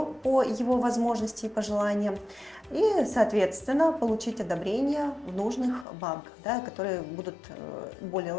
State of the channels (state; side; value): drops out; right; at 5.9 s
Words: по его возможности и пожеланиям и, соответственно, получить одобрение в нужных банках, да, которые будут более